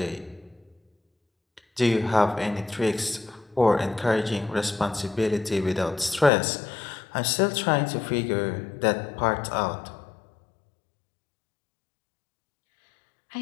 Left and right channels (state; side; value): drops out; right; at 6.3 s